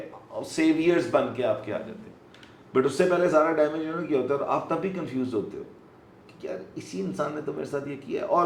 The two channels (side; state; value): both; identical; correlation 1.00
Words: سیویئرز بن کے آپ کے آ جاتے ہیں. بٹ اس سے پہلے سارا ڈیمیج انہوں نے کیا ہوتا ہے, اور آپ تب بھی کنفیوز ہوتے ہو کہ یار اسی انسان نے تو میرے ساتھ یہ کیا ہے.